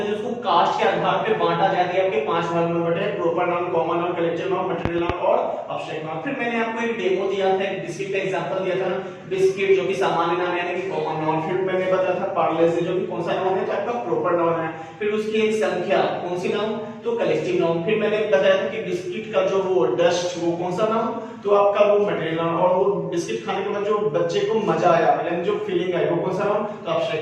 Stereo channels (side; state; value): both; identical; correlation 1.00